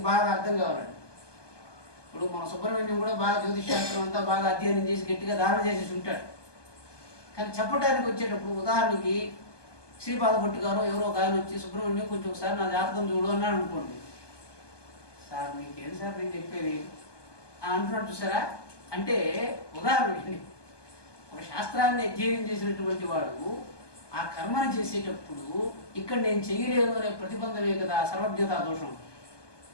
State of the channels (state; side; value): late; right; 1.2 ms